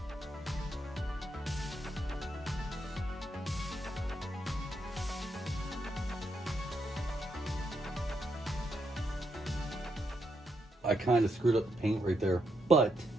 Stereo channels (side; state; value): both; normal; correlation 0.80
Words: I kind of screwed up the paint right there, but